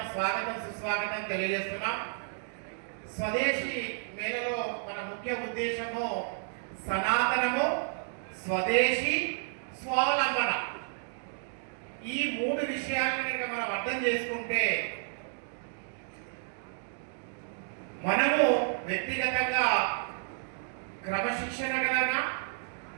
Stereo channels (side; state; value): left; silent; digital silence